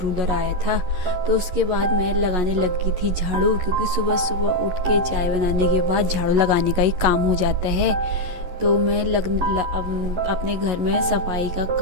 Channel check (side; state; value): left; late; 11 ms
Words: रूलर आया था। तो उसके बाद मैं लगाने लगी थी झाड़ू, क्योंकि सुबह सुबह उठ के चाय बनाने के बाद झाड़ू लगाने का ही काम हो जाता है। तो मैं अपने घर में सफाई का